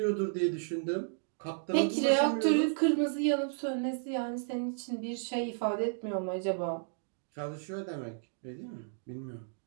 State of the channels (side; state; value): left; silent; digital silence